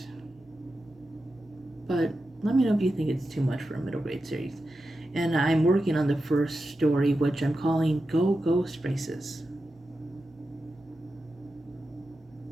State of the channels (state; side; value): normal; both; correlation 0.91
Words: But let me know if you think it's too much for a middle grade series. And I'm working on the first story, which I'm calling Go Ghost Races.